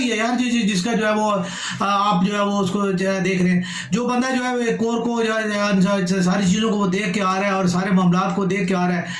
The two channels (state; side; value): identical; both; correlation 1.00